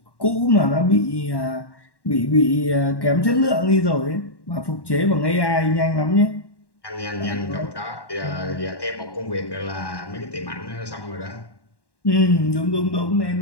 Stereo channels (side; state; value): right; late; 1.1 ms